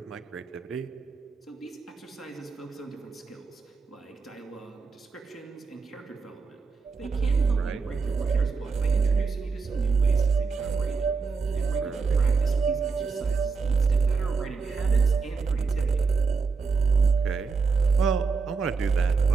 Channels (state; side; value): quieter; left; 4.8 dB